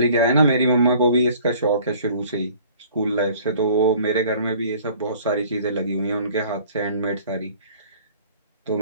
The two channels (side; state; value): both; inverted; correlation -0.52